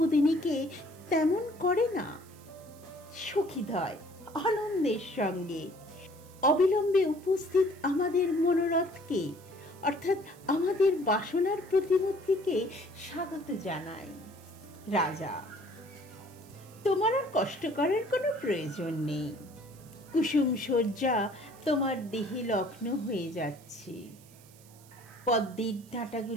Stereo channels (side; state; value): right; noise; hiss, 24 dB below the sound